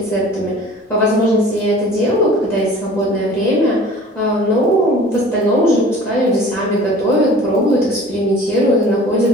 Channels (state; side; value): normal; both; correlation 0.45